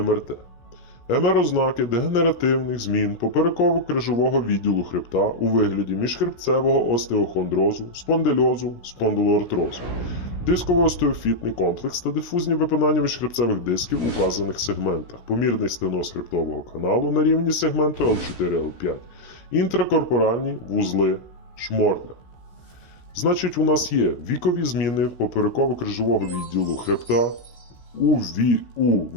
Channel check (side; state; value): right; late; 17 ms